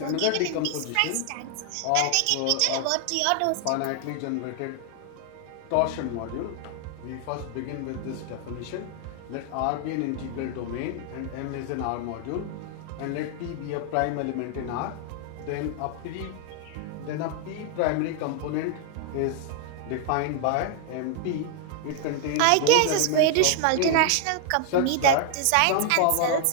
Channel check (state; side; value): different; both; correlation 0.00